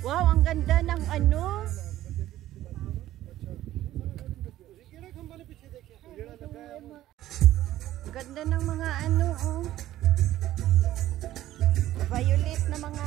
Wow, ang ganda ng ano. Ganda ng mga ano, oh. Violet na mga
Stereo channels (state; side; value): quieter; left; 14.1 dB